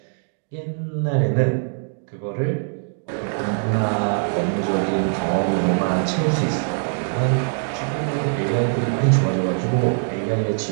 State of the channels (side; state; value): left; silent; 64 dB below the other